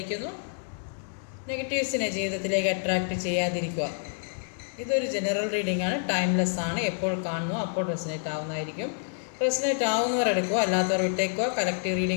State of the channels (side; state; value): right; silent; digital silence